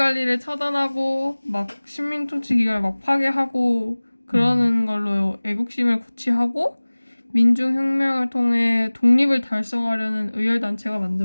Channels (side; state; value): both; inverted; correlation -1.00